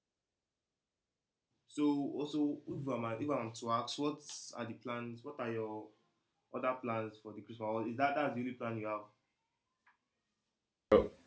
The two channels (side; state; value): both; identical; correlation 1.00